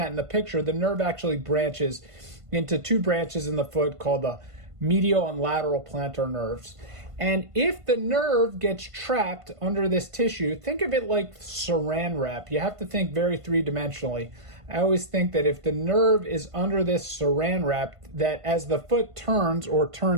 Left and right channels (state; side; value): late; left; 1.5 ms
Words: in the picture, the nerve actually branches into two branches in the foot called the medial and lateral plantar nerves. And if the nerve gets trapped under this tissue, think of it like saran wrap. You have to think very three-dimensionally. I always think that if the nerve is under this saran wrap, that as the foot turns or